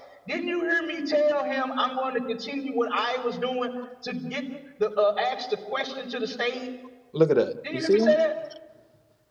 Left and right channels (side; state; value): both; identical; correlation 1.00